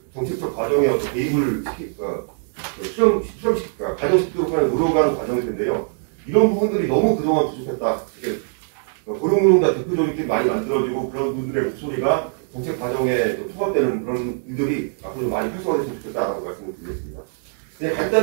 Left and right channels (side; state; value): left; silent; digital silence